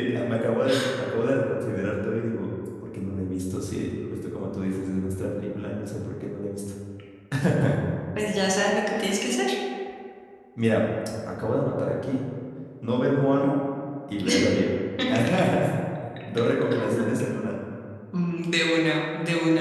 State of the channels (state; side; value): identical; both; correlation 1.00